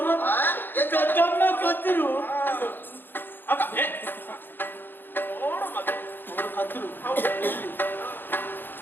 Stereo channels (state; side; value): late; right; 0.097 ms